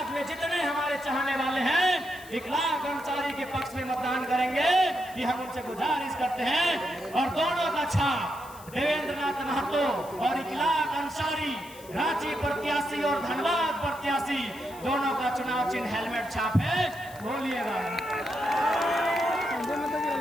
में जितने हमारे चाहने वाले हैं इकलाक अंसारी के पक्ष में मतदान करेंगे, ये हम उनसे गुजारिश करते हैं। और दोनों का छाप देवेंद्र नाथ महतो और इकलाक अंसारी, रांची प्रत्याशी और धनबाद प्रत्याशी, दोनों का चुनाव चिन्ह हेलमेट छाप है। बोलिएगा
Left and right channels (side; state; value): left; noise; hiss, 20 dB below the sound